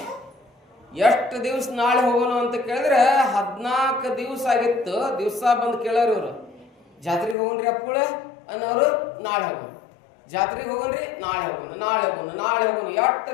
ಎಷ್ಟು ದಿವಸ ನಾಳೆ ಹೋಗೋಣ ಅಂತ ಕೇಳಿದ್ರೆ 14 ದಿವಸ ಆಗಿತ್ತು. ದಿವಸ ಬಂದು ಕೇಳೋರು ಇವರು, ಜಾತ್ರೆಗೆ ಹೋಗೋಣ್ರಿ ಅಪ್ಪುಳ ಅನ್ನೋರು, ನಾಳೆ ಹೋಗೋಣ. ಜಾತ್ರೆಗೆ ಹೋಗೋಣ್ರಿ, ನಾಳೆ ಹೋಗೋಣ, ನಾಳೆ ಹೋಗೋಣ, ನಾಳೆ ಹೋಗೋಣ. ಎಷ್ಟು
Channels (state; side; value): drops out; right; at 7.4 s